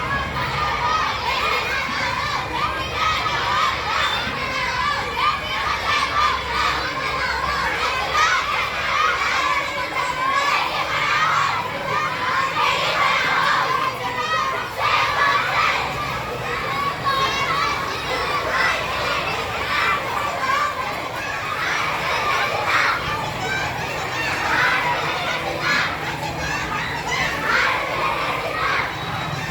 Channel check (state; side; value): identical; both; correlation 1.00